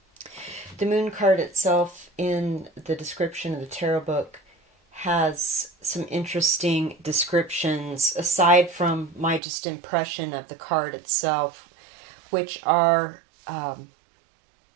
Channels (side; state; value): left; drops out; at 9.4 s